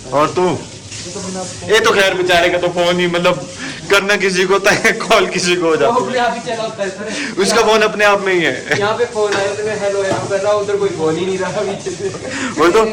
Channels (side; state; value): both; identical; correlation 1.00